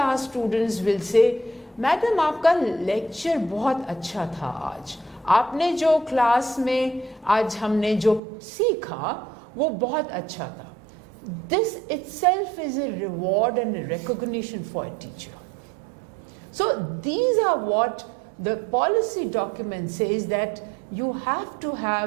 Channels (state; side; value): drops out; left; at 8.2 s